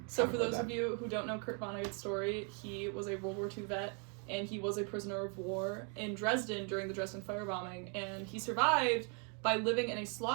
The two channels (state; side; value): quieter; left; 38.0 dB